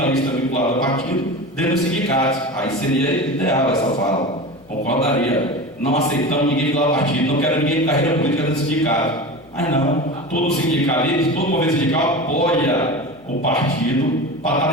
vinculados a partido dentro dos sindicatos. Aí seria ideal essa fala. Concordaria. Não aceitamos ninguém vinculado a partido, não quero ninguém de carreira política dentro do sindicato. Mas não, todo sindicalista, todo movimento sindical apoia o partido para estar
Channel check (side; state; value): left; noise; hum, 27 dB below the sound